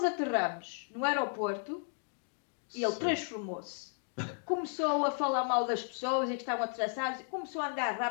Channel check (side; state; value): right; silent; 55 dB below the other